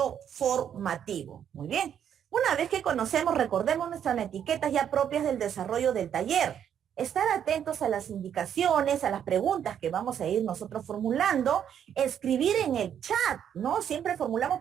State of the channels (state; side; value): quieter; left; 9.1 dB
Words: formativo. Muy bien. Una vez que conocemos, recordemos nuestras etiquetas ya propias del desarrollo del taller. Estar atentos a las indicaciones, a las preguntas que vamos a ir nosotros formulando, escribir en el chat, ¿no? Siempre formulamos